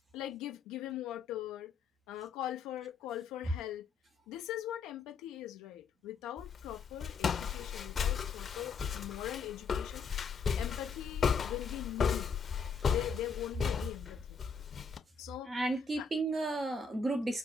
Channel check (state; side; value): quieter; right; 4.8 dB